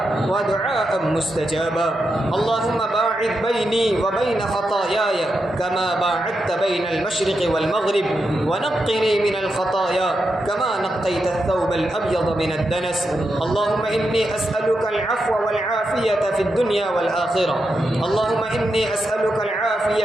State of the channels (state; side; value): normal; both; correlation 0.86